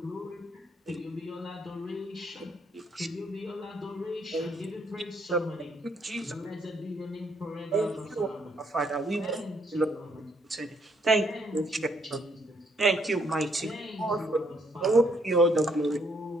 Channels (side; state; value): both; normal; correlation 0.70